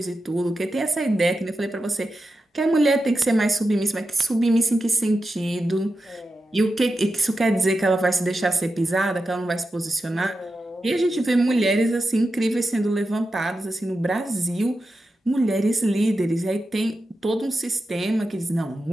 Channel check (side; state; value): both; normal; correlation 0.90